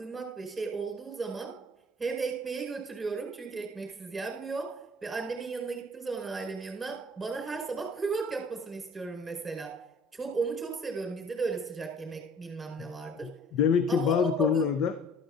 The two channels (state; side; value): normal; both; correlation 0.51